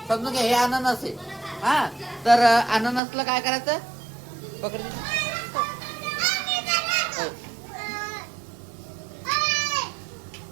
समजून घ्या, हे अननस आहे हा. तर अननसला काय करायचं, पकड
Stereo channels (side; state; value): left; drops out; at 3.0 s